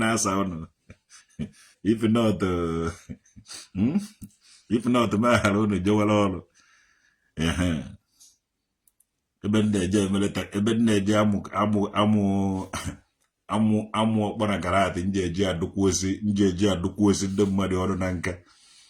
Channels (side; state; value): both; identical; correlation 1.00